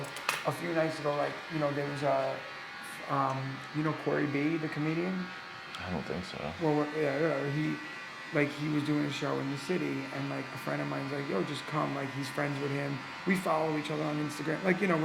a few nights ago, like there was Corey B, the comedian. I don't think so. Well, yeah, he was doing a show in the city, and like a friend of mine's like, yo, just come. Like he's friends with him. We follow each other on Instagram. Like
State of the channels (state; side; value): identical; both; correlation 1.00